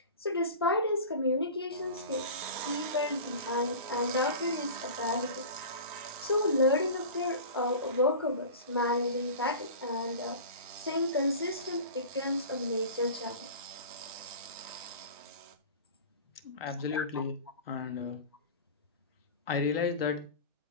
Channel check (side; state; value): both; inverted; correlation -0.35